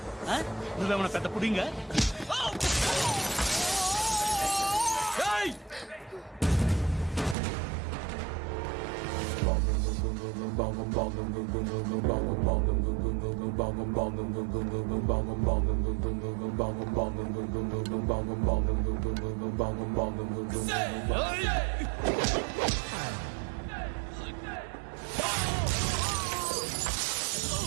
నువ్వేమన్నా పెద్ద పుడింగా?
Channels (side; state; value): left; drops out; at 7.4 s